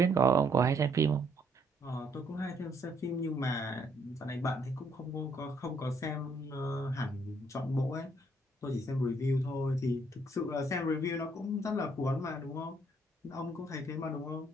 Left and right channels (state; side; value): normal; both; correlation 0.69